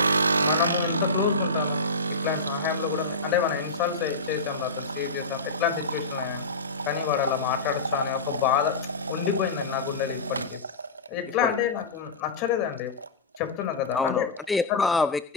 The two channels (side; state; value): right; quieter; 3.4 dB